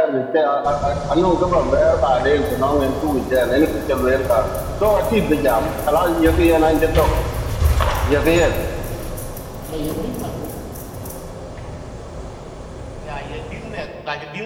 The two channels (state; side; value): identical; both; correlation 1.00